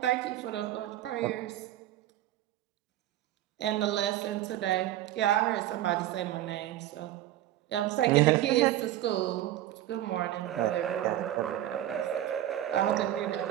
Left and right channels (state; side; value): quieter; left; 13.3 dB